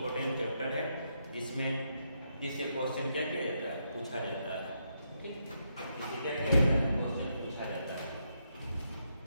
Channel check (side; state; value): both; inverted; correlation -0.80